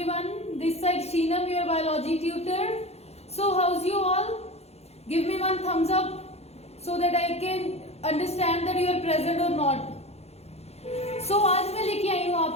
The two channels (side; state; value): right; late; 0.31 ms